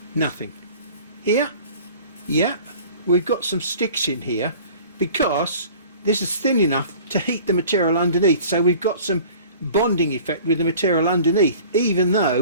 Nothing. Here? Yeah, we've got some sticks in here because this is thin enough to heat the material underneath. So we've got some bonding effect with the material underneath, even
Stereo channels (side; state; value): both; inverted; correlation -0.46